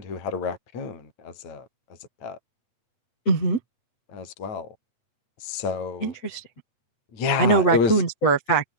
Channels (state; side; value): late; right; 8.2 ms